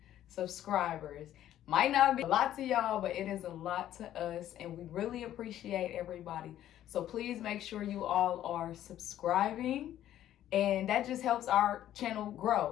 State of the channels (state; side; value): quieter; right; 12.1 dB